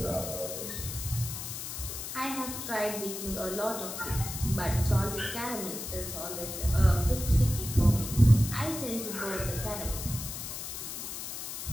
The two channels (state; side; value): noise; left; hiss, 7 dB below the sound